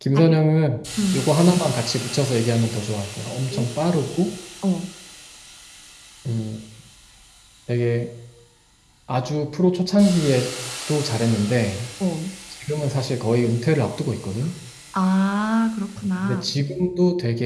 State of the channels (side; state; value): both; identical; correlation 1.00